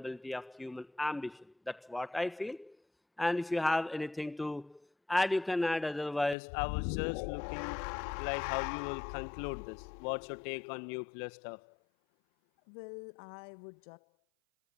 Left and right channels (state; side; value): drops out; right; at 6.4 s